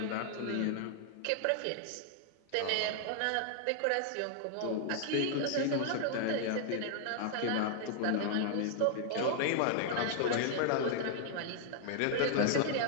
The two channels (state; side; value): different; both; correlation 0.00